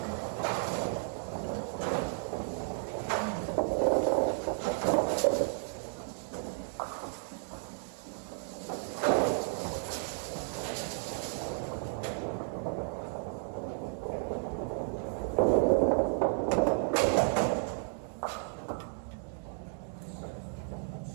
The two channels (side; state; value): left; silent; 56 dB below the other